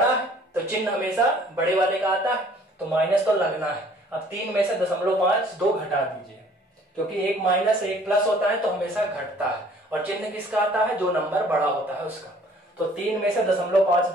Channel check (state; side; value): normal; both; correlation 0.55